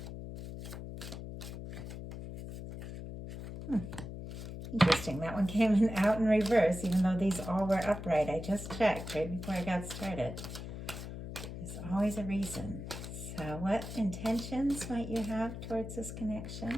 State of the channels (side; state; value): left; noise; hum, 9 dB below the sound